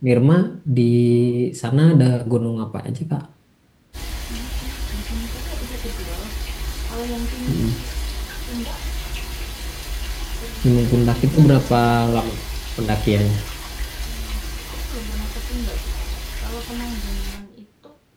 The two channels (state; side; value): identical; both; correlation 1.00